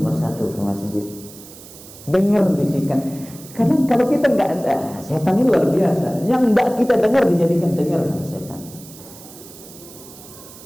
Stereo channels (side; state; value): right; noise; hiss, 18 dB below the sound